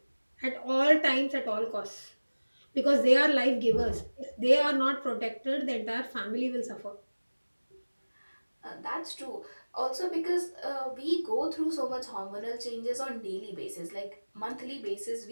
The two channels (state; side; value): inverted; both; correlation -1.00